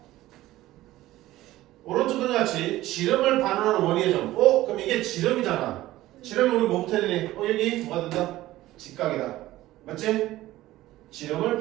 오른쪽과 같이 지름을 반환하는 원위의 점. 그럼 이게 지름이잖아. 지름이 우리 뭐부터 해야 되니? 여기 뭐가 된다? 직각이다. 맞지? 지름을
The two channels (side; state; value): left; quieter; 16.1 dB